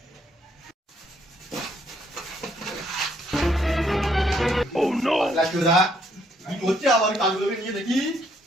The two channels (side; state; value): both; normal; correlation 0.70